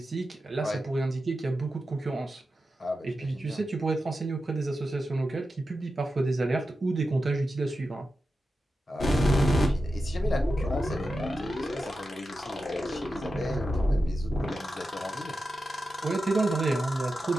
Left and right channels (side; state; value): both; normal; correlation 0.91